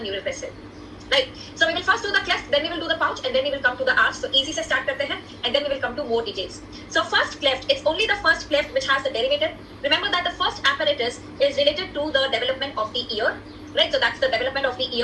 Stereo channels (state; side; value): identical; both; correlation 1.00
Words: neural crest cell. Right. So we will first do the cleft, then we will do the pouch, and then we will come to the arch. So easy se start karte hain, and then we will come to more details. So first cleft, it's only the first cleft which has the derivative. Remember that the first apparatus is related to the development of the ear. Right, so that's the development of the